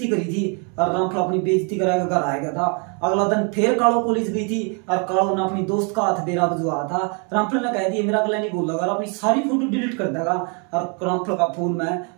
करी थी और रामफल अपनी बेइज्जती करा के घर आ गया था। अगला दिन फिर कालो कॉलेज गई थी और कालो ने अपनी दोस्त का हाथ बेरा बजवा था। रामफल ने कह दिया मेरा अगला नहीं बोल लगा, अपनी सारी फोटो डिलीट कर देगा। और रामफल का फोन में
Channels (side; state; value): left; quieter; 36.8 dB